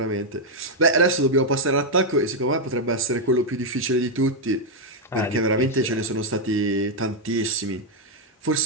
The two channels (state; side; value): normal; both; correlation -0.01